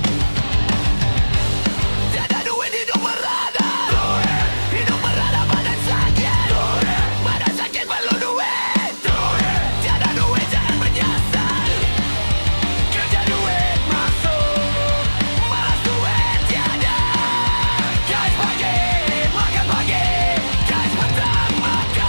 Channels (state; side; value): inverted; both; correlation -1.00